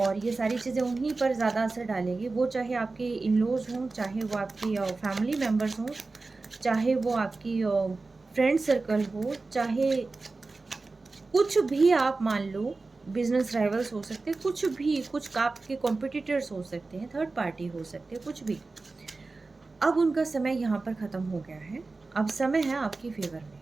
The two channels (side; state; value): left; quieter; 3.7 dB